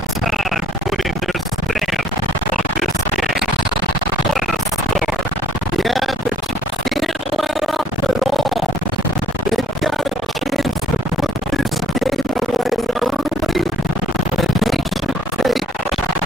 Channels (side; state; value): both; normal; correlation 0.60